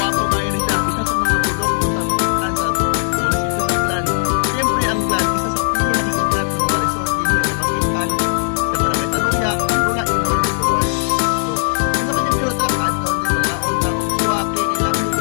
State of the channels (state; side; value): silent; right; 57 dB below the other